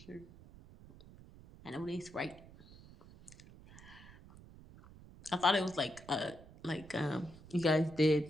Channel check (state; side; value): noise; right; rumble, 20 dB below the sound